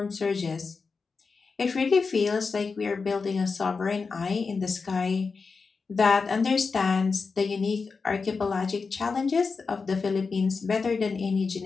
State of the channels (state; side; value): quieter; right; 4.7 dB